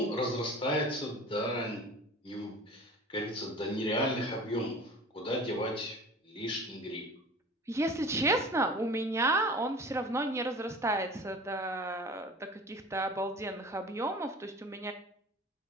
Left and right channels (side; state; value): both; normal; correlation 0.40